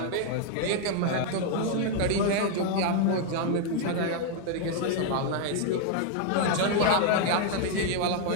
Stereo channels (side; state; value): both; different; correlation 0.00